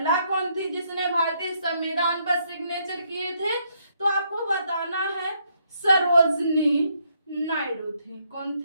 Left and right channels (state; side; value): inverted; both; correlation -0.73